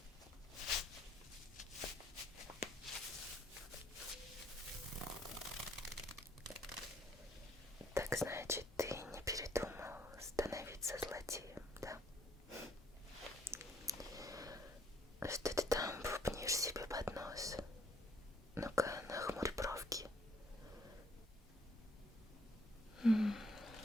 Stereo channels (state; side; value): normal; both; correlation 0.66